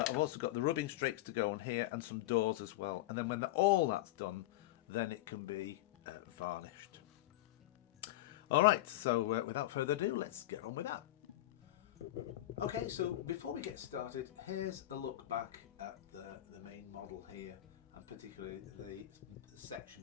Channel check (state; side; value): quieter; right; 15.9 dB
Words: also got the rubbing strakes to go on here and some doors as well. And then when all that's done, then it can be varnished. Alright, so without further ado, let's get on with that. Okay, so before we get started, here's a look back at the main model here, and particularly the section